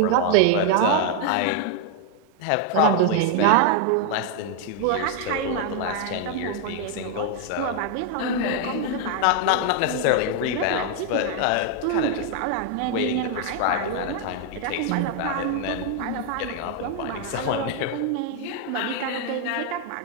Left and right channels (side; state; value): both; different; correlation 0.00